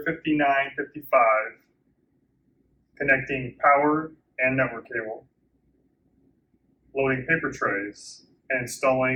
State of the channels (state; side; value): identical; both; correlation 1.00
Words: 5955 connecting power and network cable, loading paper trays, and